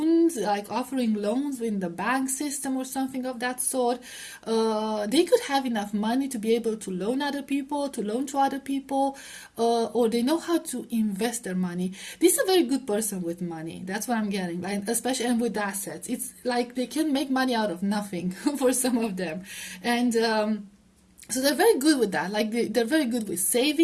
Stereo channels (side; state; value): both; identical; correlation 1.00